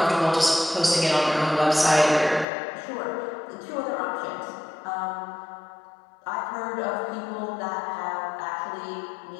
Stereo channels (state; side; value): drops out; right; at 2.5 s